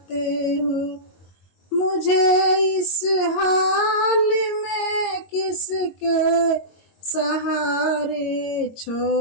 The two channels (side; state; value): right; late; 22 ms